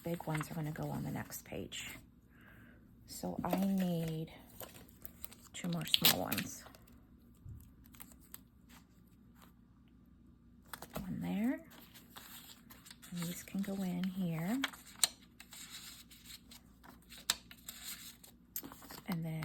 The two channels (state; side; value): identical; both; correlation 1.00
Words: big ones are going to go on the next page. So I need 2 more small ones. One there. And these can go in here. And